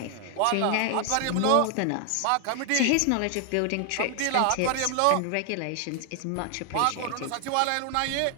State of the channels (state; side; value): different; both; correlation 0.00